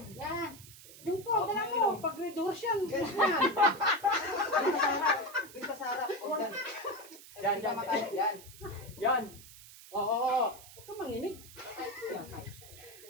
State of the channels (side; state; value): right; noise; hiss, 18 dB below the sound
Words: Yan. Yung po, dala mo. Pag-reduce yan. Dito sa harap. Yan. Oo. Huwag ka manginig.